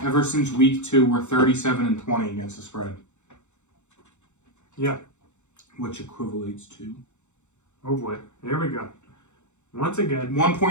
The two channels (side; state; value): right; late; 0.83 ms